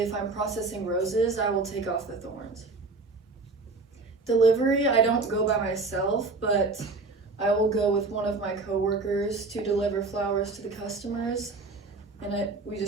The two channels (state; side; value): quieter; left; 3.7 dB